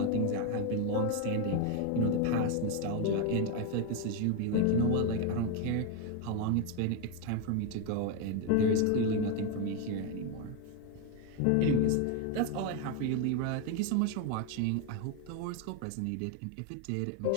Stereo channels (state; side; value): different; both; correlation 0.02